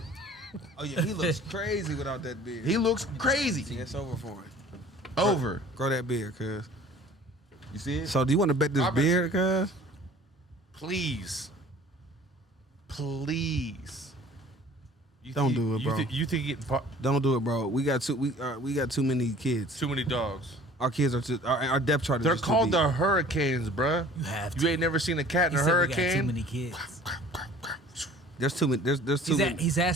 Oh yeah, he looks crazy without that beard. He looks crazy. Yeah, it's over for him. Over. Grow that beard, cuz. You see it? So do you want to bet this I bet beard, cuz? Please, please. You Don't do it, bro. You think getting Don't do it, bro. We got too many kids. too many dogs? Our kids are too. Our depth chart is They're just too called deep. the hurricanes, bruh. You have to. You ain't never seen a cat in He a said we got too hurricane. many kids. There's too many. There's too many. He's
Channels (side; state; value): both; normal; correlation 0.49